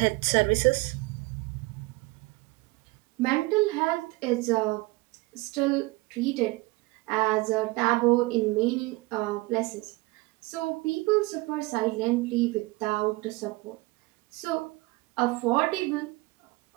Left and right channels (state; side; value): quieter; left; 22.7 dB